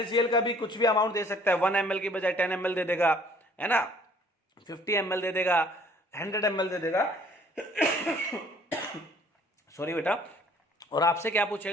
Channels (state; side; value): normal; both; correlation 0.57